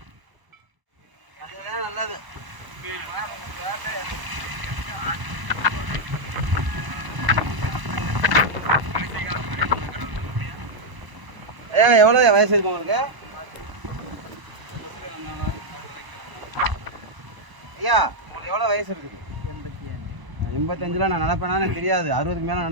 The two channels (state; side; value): late; left; 1.0 ms